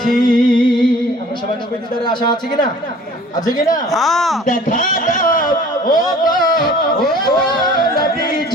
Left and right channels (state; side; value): normal; both; correlation 0.49